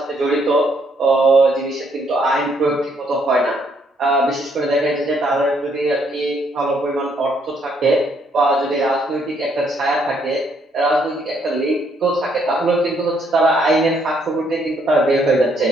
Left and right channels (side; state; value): both; normal; correlation 0.70